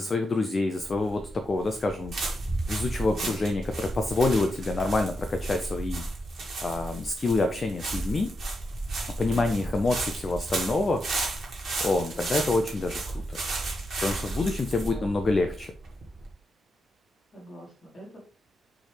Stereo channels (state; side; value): normal; both; correlation 0.85